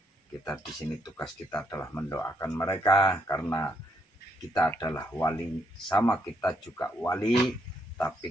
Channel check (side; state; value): both; normal; correlation 0.74